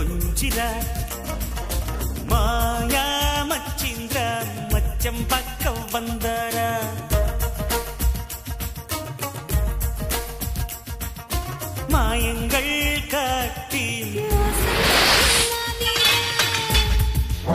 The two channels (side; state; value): both; identical; correlation 1.00